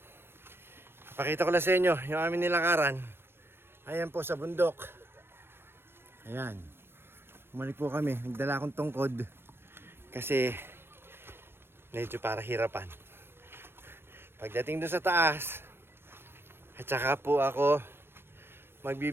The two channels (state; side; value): late; left; 0.11 ms